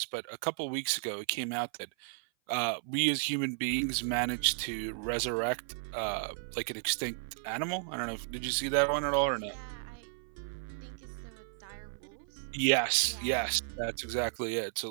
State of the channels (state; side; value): silent; left; 55 dB below the other